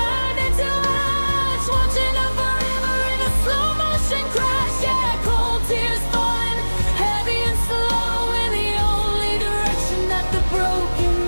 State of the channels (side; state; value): both; inverted; correlation -1.00